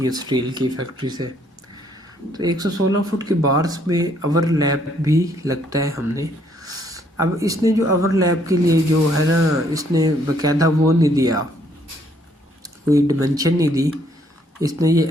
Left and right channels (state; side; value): normal; both; correlation 0.67